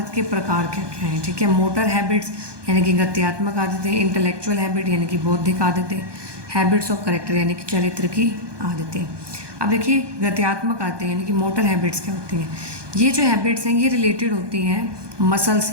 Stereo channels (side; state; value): left; late; 1.2 ms